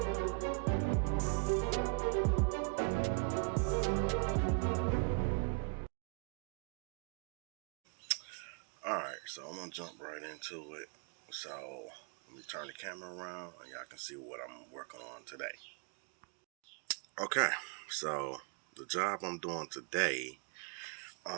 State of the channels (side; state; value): left; quieter; 37.6 dB